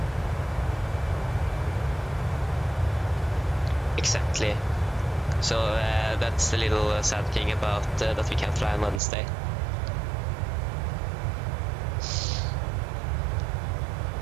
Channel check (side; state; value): left; drops out; at 9.0 s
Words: Exactly. So that's the little sad thing about that we can't fly on Wednesday.